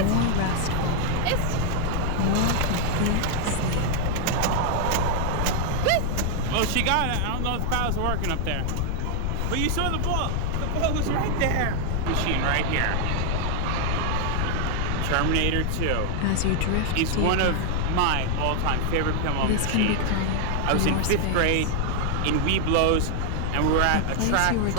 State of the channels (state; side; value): different; both; correlation 0.00